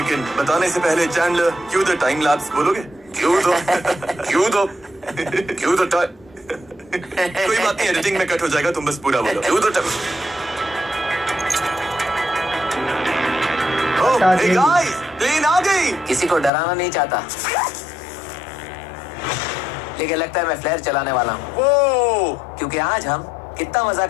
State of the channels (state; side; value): drops out; right; at 16.5 s